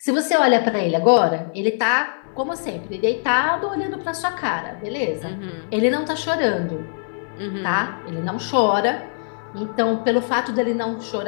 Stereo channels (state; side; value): silent; right; 63 dB below the other